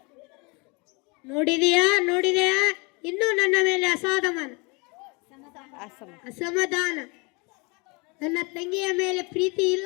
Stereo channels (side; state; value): right; quieter; 29.1 dB